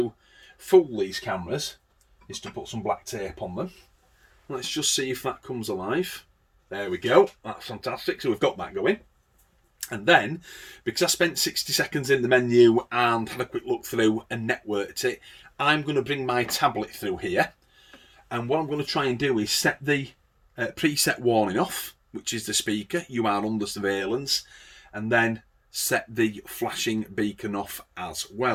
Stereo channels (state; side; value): identical; both; correlation 1.00